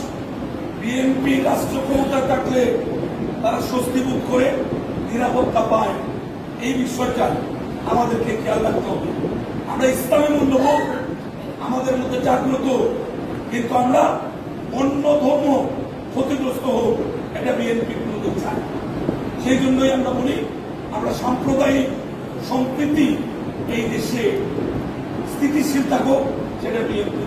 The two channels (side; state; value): both; identical; correlation 1.00